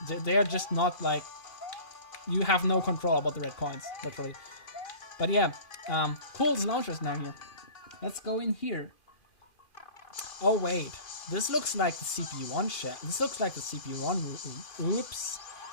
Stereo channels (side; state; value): right; late; 2.4 ms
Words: They are just not like you have no control about the red coins, literally. But yeah, cool, there's launchers now here. Let's go in here. Oh wait, this looks like the CPU1 shell. This looks like the CPU1 room. Oops.